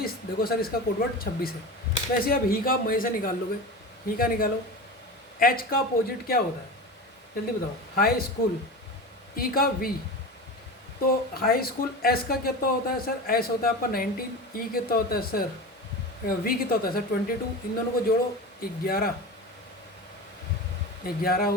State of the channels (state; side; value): normal; both; correlation 0.28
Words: देखो सर इसका कोडवर्ड 26 है। वैसे अब ही का आप मई से निकाल लोगे, ही का निकालो। एच का अपोजिट क्या होता है जल्दी बताओ, हाई स्कूल। ई का वी, तो हाई स्कूल। एस का कितना होता है सर, एस होता है आपका 19। ई कितना होता है सर, वी कितना होता है सर 22। इन दोनों को जोड़ो 11, 11